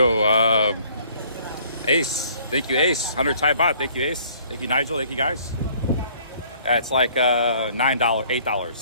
Ace. Thank you, Ace. 100 Thai baht. Thank you, Ace. Thank you, Nigel. Thank you, guys. Yeah, it's like $9,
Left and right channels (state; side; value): inverted; both; correlation -0.58